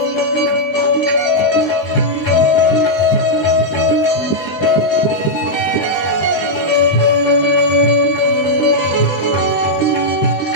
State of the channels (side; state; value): right; late; 20 ms